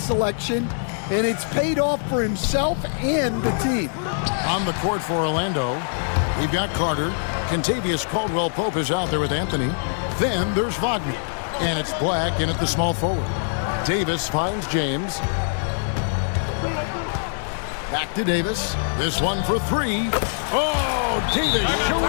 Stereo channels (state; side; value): silent; right; 61 dB below the other